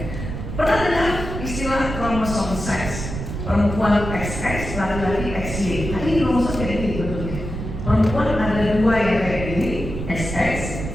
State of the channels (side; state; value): right; noise; rumble, 6 dB below the sound